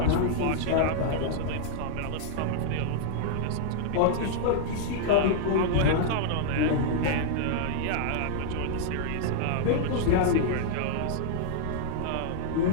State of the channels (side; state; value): both; different; correlation -0.01